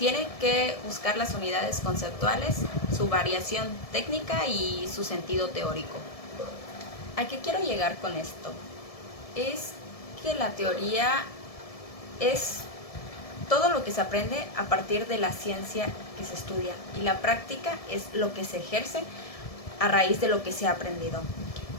que buscar las unidades conceptuales, su variación técnica y su sentido teórico. ¿A qué quiero llegar con esto? Es que la teoría es todo lo que se aprende a partir de la ciencia que se estudia, y la práctica es lo que se ejerce a raíz de lo que se ha aprendido.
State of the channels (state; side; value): late; right; 1.7 ms